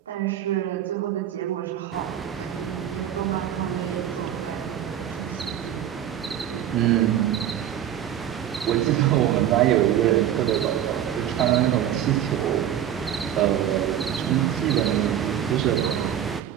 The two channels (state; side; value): quieter; left; 10.5 dB